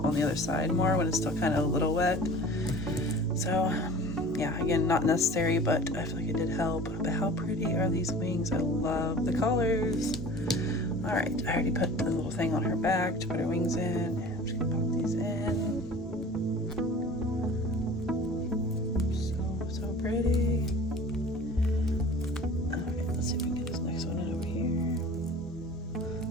on the other side more when it's still kind of a little wet. So yeah, again, not necessary, but I feel like it did help. But how pretty are these wings? I love the colors. All right, I already put the little thing on her back to put her wings in. I'm just gonna pop these in. So pretty. Okay, let's see if we can get this next one in over here.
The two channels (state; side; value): normal; both; correlation 0.42